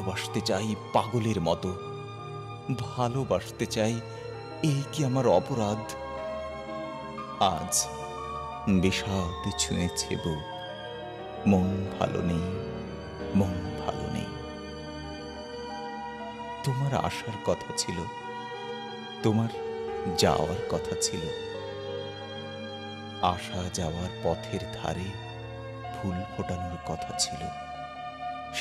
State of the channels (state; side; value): identical; both; correlation 1.00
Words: চাই পাগলের মতো, ভালোবাসতে চাই। এই কি আমার অপরাধ? আজ বিষাদ ছুঁয়েছে বুক, মন ভালো নেই, মন ভালো নেই। তোমার আসার কথা ছিল, তোমার যাওয়ার কথা ছিল। আসা যাওয়ার পথের ধারে ফুল ফোটানোর কথা ছিল।